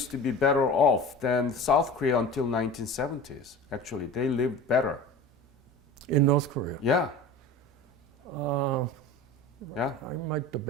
to be better off than South Korea until 1970s. Actually, they lived better. In North Korea. Yeah. Yeah. I might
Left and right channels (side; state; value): both; normal; correlation 0.36